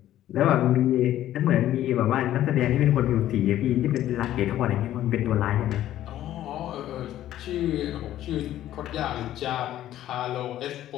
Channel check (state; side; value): quieter; right; 12.9 dB